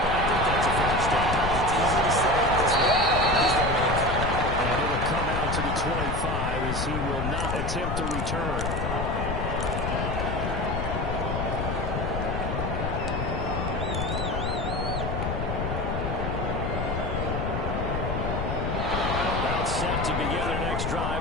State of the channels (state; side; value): noise; left; rumble, 1 dB below the sound